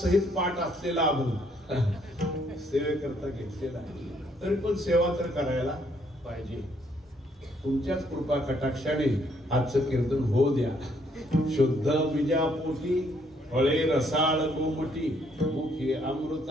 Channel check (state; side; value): normal; both; correlation 0.69